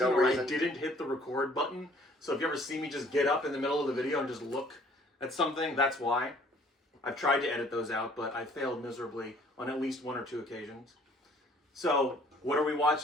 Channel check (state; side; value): normal; both; correlation 0.57